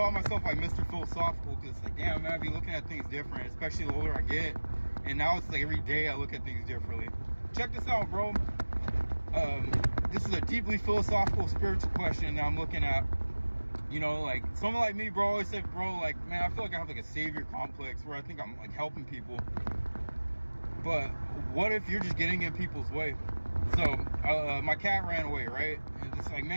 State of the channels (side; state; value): both; inverted; correlation -1.00